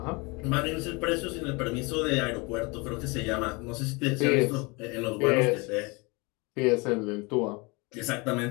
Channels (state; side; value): quieter; right; 27.5 dB